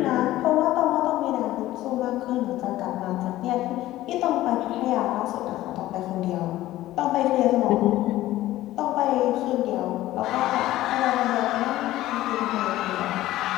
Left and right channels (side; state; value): right; quieter; 15.4 dB